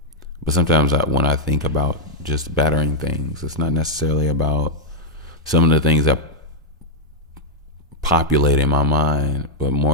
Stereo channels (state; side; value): normal; both; correlation -0.04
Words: sometimes when I think about just bettering things, it's not necessarily about some of the things that populate in my mind, but